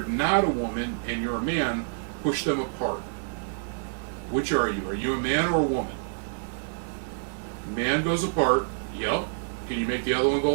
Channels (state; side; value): silent; left; digital silence